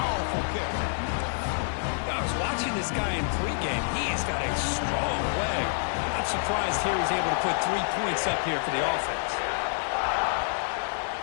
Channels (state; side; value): silent; right; digital silence